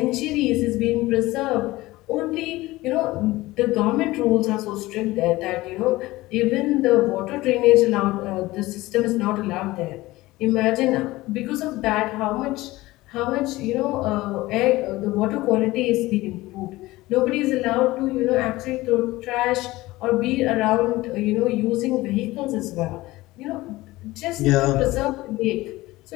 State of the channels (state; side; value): quieter; right; 18.9 dB